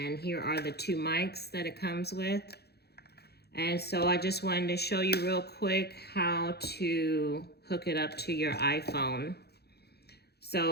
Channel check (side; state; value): right; late; 0.47 ms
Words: here are the two mics that it comes with. And so I just wanted to show you real quick how to hook it up to your iPhone.